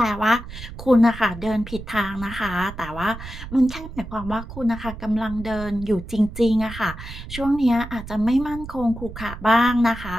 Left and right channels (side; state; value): right; noise; rumble, 12 dB below the sound